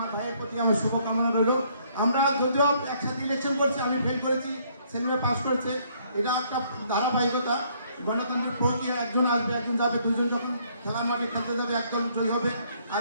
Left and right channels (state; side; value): inverted; both; correlation -0.66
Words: ভাইয়ের প্রতি আমার শুভকামনা রইল। আমরা যদিও একসাথে ইলেকশন করছি, আমি ফেল করেছি, সেলিমে পাস করেছে, এটা একটা ধারাবাহিকতা, গণতান্ত্রিক প্রক্রিয়া। একজন আসবে, একজন যাবে, দুজন যখন খেলা মাঠে খেলতে যাবে একদল জয়ী হবে,